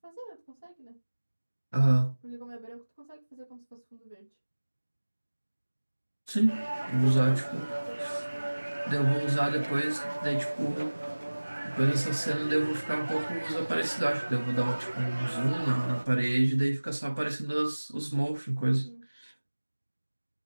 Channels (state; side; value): inverted; both; correlation -1.00